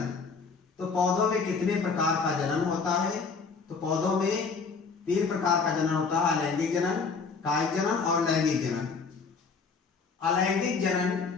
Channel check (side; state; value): right; quieter; 5.0 dB